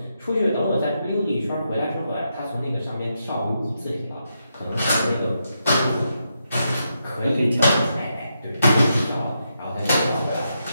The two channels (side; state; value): both; inverted; correlation -0.83